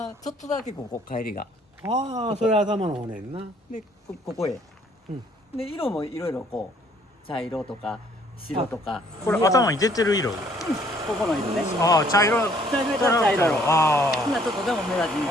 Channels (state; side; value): normal; both; correlation 0.62